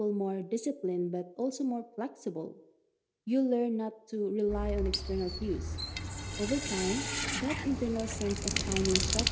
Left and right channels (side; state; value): both; identical; correlation 1.00